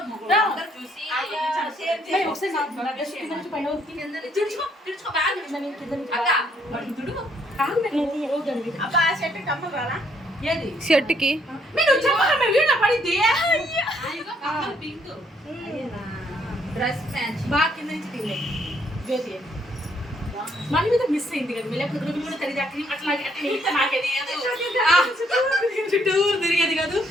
షర్ట్కి మన మీద మిస్ అయింది కదా, లేకపోతే చుట్టూరు తిరిగేది కాదు.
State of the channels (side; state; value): both; normal; correlation 0.69